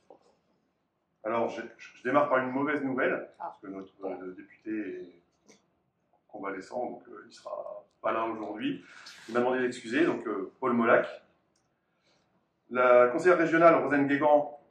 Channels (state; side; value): identical; both; correlation 1.00